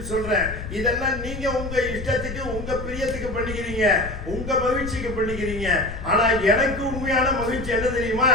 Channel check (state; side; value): noise; left; rumble, 9 dB below the sound